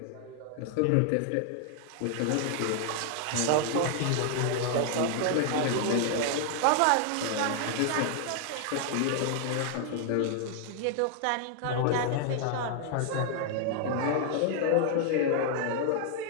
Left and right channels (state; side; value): different; both; correlation 0.00